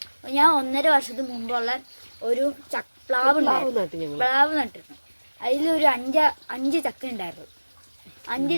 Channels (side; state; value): both; inverted; correlation -1.00